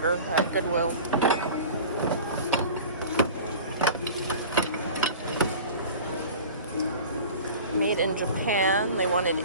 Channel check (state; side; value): inverted; both; correlation -0.39